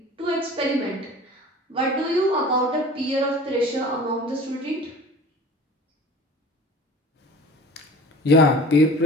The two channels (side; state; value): both; normal; correlation 0.42